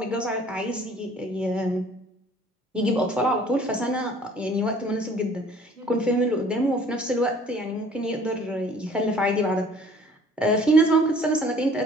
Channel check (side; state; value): both; normal; correlation 0.54